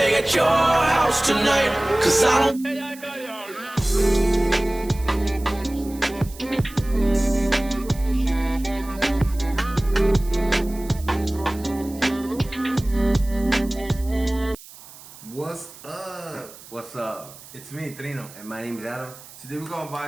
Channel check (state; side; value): noise; right; hiss, 19 dB below the sound